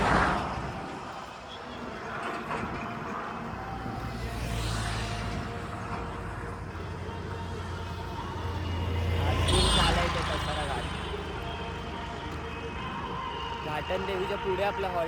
घाटन देवीच्या पुढे आपला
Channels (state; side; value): identical; both; correlation 1.00